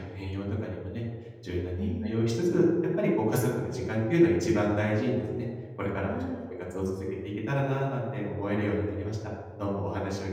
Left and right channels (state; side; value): identical; both; correlation 1.00